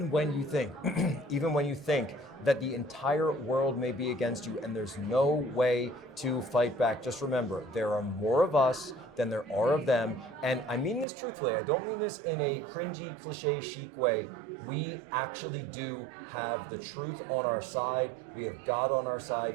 when you think, that the entire world may be against you and there's no way to fight back. Just remember, there are more of us than there are of them. And I mean this truthfully, I don't mean this in a cringy, cliche, chic way. We actually do have the truth on our side, we have God on our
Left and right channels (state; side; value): drops out; left; at 11.1 s